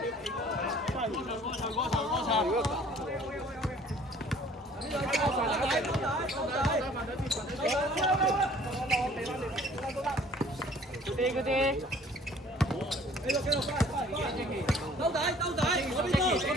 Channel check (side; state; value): both; normal; correlation 0.53